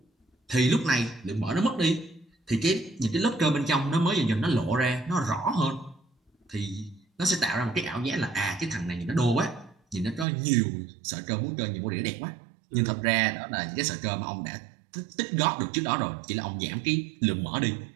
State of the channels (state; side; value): drops out; left; at 10.2 s